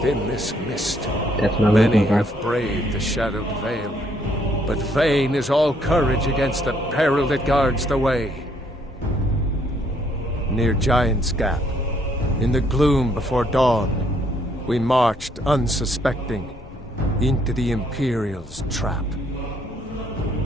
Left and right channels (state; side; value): normal; both; correlation 0.68